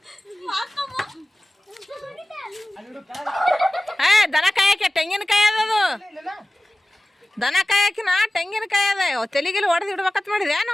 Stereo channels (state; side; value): normal; both; correlation 0.97